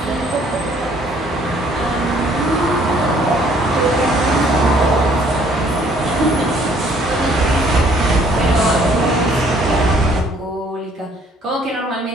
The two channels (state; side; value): normal; both; correlation 0.61